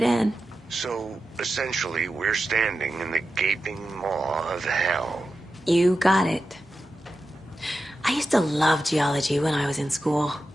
in. So, essentially, we're standing in the gaping maw of hell. You got it. I used to love geology when I was in school.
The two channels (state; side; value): normal; both; correlation 0.92